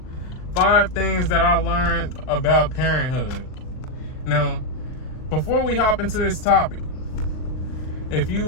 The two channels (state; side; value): late; right; 39 ms